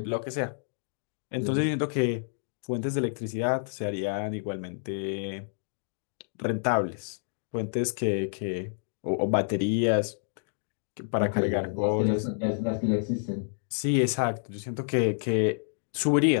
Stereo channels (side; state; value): right; silent; digital silence